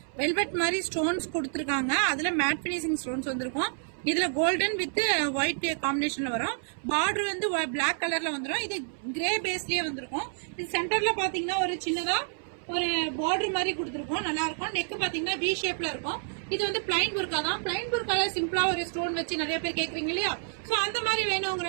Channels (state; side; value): silent; left; 59 dB below the other